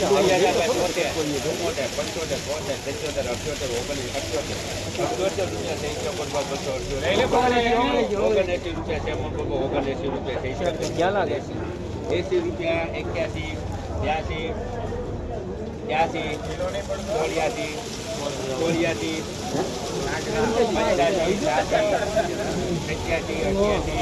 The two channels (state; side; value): identical; both; correlation 1.00